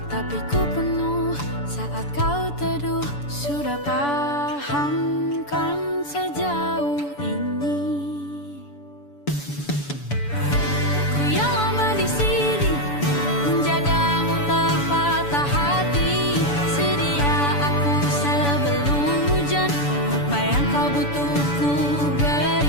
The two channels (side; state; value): right; late; 7.0 ms